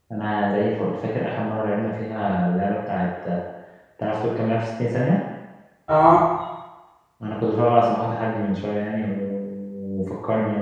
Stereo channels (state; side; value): identical; both; correlation 1.00